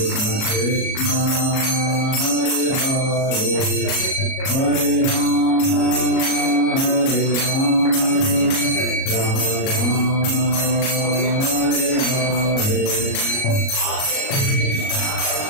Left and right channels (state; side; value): late; right; 37 ms